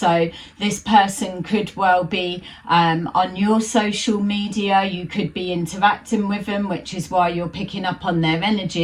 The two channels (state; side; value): identical; both; correlation 1.00